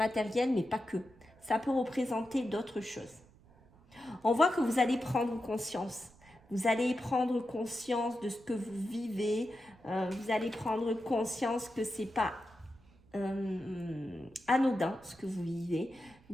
mais pas que. Ça peut représenter d'autres choses. On voit que vous allez prendre conscience. Vous allez prendre conscience de ce que vous vivez. Vous allez prendre conscience que ce n'est pas anodin ce que vous vivez.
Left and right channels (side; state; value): right; noise; rumble, 27 dB below the sound